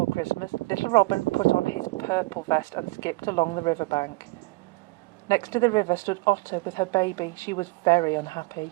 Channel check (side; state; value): left; quieter; 24.0 dB